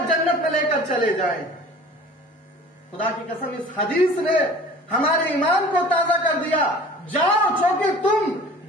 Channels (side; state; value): both; normal; correlation 0.45